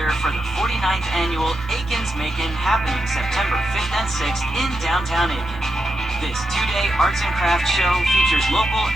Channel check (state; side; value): normal; both; correlation 0.86